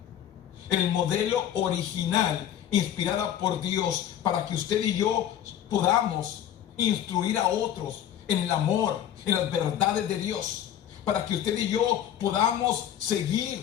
inspirada por Dios, para que usted y yo podamos instruir a otros en el amor, en las verdades de Dios, para que usted y yo podamos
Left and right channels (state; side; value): quieter; right; 10.5 dB